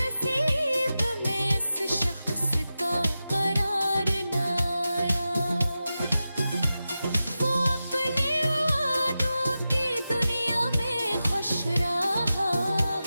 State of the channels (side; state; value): both; inverted; correlation -0.93